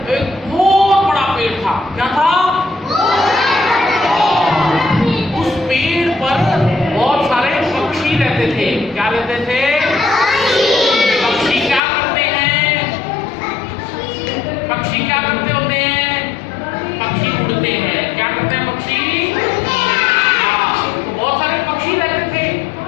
एक बहुत बड़ा पेड़ था। क्या था? उस पेड़ पर बहुत सारे पक्षी रहते थे। क्या रहते थे? पक्षी क्या करते हैं? पक्षी क्या करते होते हैं? पक्षी उड़ते हैं। क्या करते हैं पक्षी? हाँ, तो बहुत सारे पक्षी रहते थे।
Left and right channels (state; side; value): drops out; right; at 11.8 s